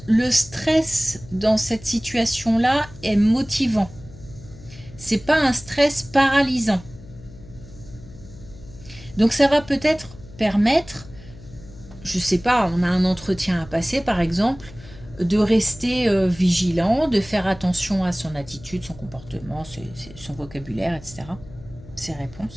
le stress dans cette situation-là est motivant. C'est pas un stress paralysant. Donc ça va peut-être permettre, je sais pas, on a un entretien à passer par exemple, de rester vigilant, de faire attention à son attitude, son comportement, son vocabulaire, etc. Ses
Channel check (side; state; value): left; noise; hum, 19 dB below the sound